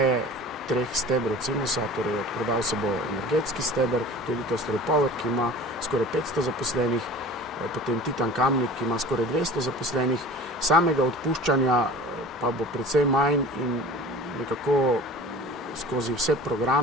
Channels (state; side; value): normal; both; correlation 0.40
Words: 3 stebrov Cimosa, torej odprodal se bo energetski steber, to je Litostroy Power, ki ima skoraj 500 zaposlenih, potem Titan Kamnik, ki ima skoraj 200 zaposlenih, samega odpuščanja pa bo precej manj in nekako skozi vse